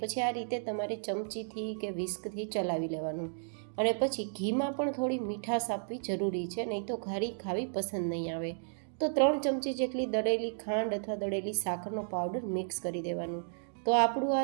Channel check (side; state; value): left; silent; digital silence